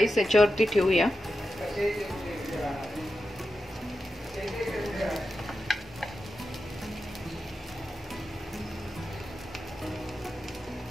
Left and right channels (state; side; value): normal; both; correlation 0.90